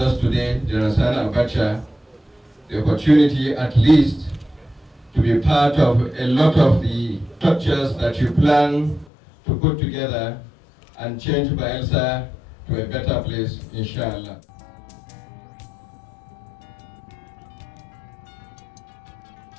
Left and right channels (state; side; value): drops out; right; at 9.1 s